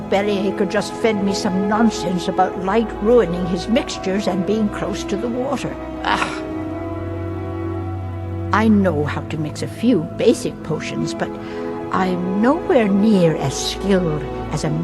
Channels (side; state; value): both; identical; correlation 1.00